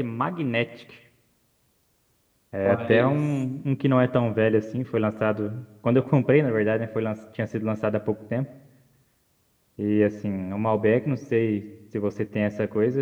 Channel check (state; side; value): identical; both; correlation 1.00